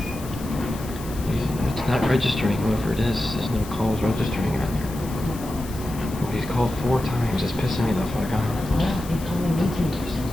It's not registering, whoever it is. There's no calls registering on there. He's called 4 times. It's pissing me the fuck off.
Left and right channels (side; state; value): left; noise; hiss, 16 dB below the sound